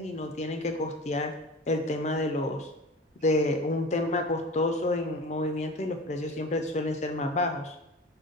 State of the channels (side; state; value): both; normal; correlation 0.35